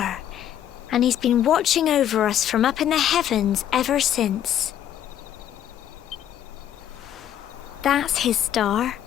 and he's been watching over us from up in the heavens ever since. That's his star,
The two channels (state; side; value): quieter; right; 10.8 dB